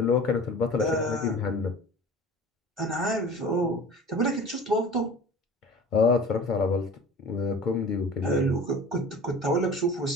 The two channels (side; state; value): both; normal; correlation 0.40